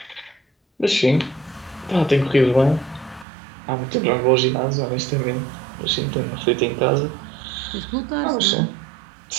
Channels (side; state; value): left; drops out; at 3.2 s